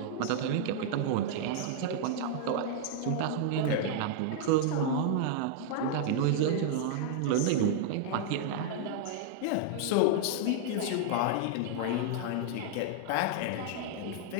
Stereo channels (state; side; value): different; both; correlation -0.01